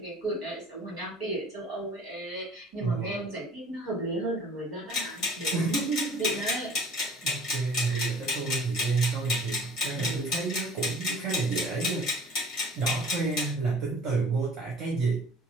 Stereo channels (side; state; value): both; normal; correlation 0.49